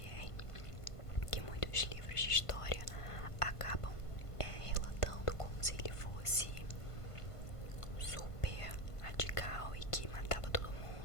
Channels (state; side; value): late; right; 1.5 ms